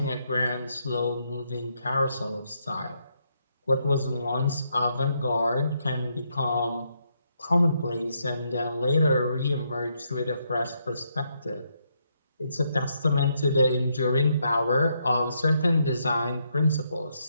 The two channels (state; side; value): inverted; both; correlation -0.77